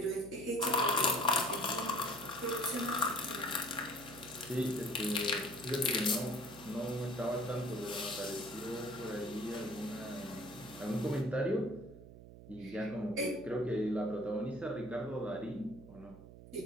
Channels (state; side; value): noise; right; hum, 16 dB below the sound